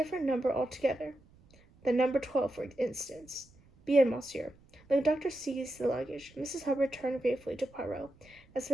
number altogether. The number 12, for instance. Bien, monsieur. The conductor seized the luggage. Mrs. Hubbard turned gratefully to Poirot. That's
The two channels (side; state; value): right; noise; rumble, 27 dB below the sound